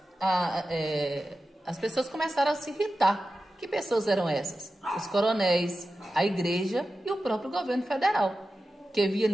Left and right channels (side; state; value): both; normal; correlation 0.93